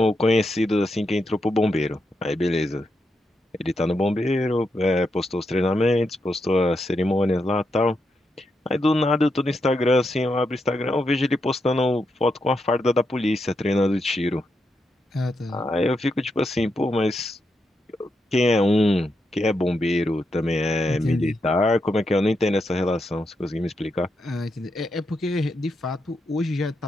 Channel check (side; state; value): both; normal; correlation 0.83